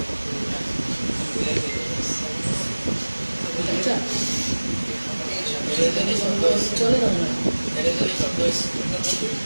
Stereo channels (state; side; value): inverted; both; correlation -1.00